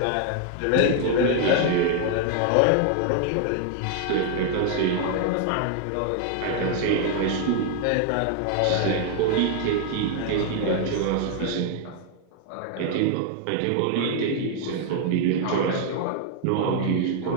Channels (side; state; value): both; different; correlation 0.00